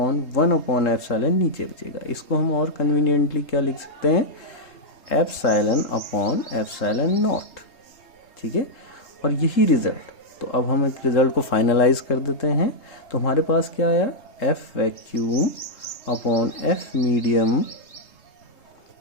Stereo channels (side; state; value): right; late; 3.2 ms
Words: 1/एप्सिलॉन नीचे बचेगा। इसको हम और कन्वीनियंटली क्या लिख सकते हैं, एप्सिलॉन अपॉन एप्सिलॉन नॉट, ठीक है। और यही रिजल्ट, तो अब हम एक रिजल्ट को फाइनलाइज कर देते हैं। तो हमारे पास क्या आया, F vacuum upon F medium